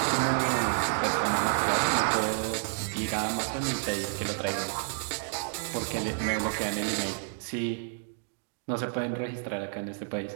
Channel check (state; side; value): silent; left; digital silence